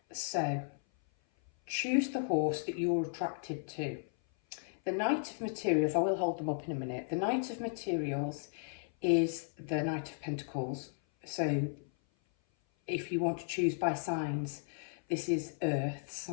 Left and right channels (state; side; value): silent; right; 54 dB below the other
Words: So, choose the horse that you're attracted to. The Knight of Materials, I will hold them up in a minute. The Knight of Materials is the Knight of Pentacles. So, if you want to choose by signs, this is Earth